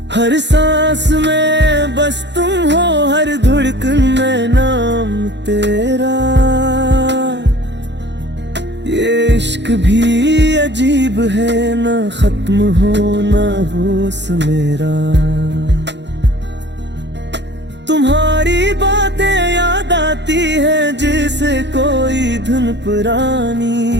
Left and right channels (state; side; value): late; left; 0.51 ms